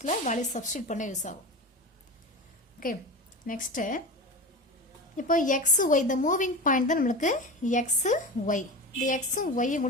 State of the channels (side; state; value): both; normal; correlation 0.27